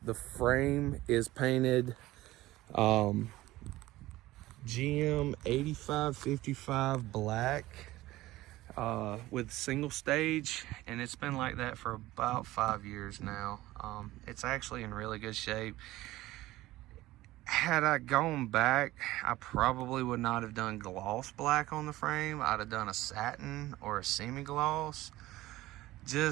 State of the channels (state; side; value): quieter; left; 17.2 dB